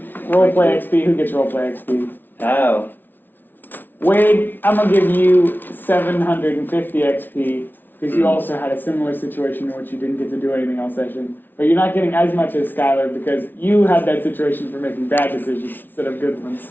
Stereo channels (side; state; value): right; late; 0.093 ms